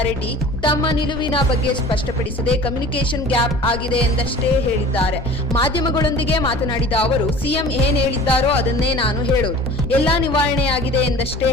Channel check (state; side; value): normal; both; correlation 0.43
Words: ತಮ್ಮ ನಿಲುವಿನ ಬಗ್ಗೆ ಸ್ಪಷ್ಟಪಡಿಸದೆ ಕಮ್ಯುನಿಕೇಷನ್ ಗ್ಯಾಪ್ ಆಗಿದೆ ಎಂದಷ್ಟೇ ಹೇಳಿದ್ದಾರೆ. ಮಾಧ್ಯಮಗಳೊಂದಿಗೆ ಮಾತನಾಡಿದ ಅವರು, ಸಿಎಂ ಏನ್ ಹೇಳಿದ್ದಾರೋ ಅದನ್ನೇ ನಾನು ಹೇಳೋದು, ಎಲ್ಲಾ ನಿವಾರಣೆಯಾಗಿದೆ ಎಂದಷ್ಟೇ